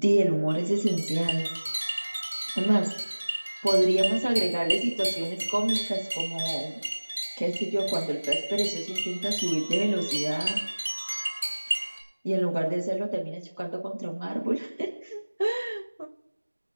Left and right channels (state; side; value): inverted; both; correlation -1.00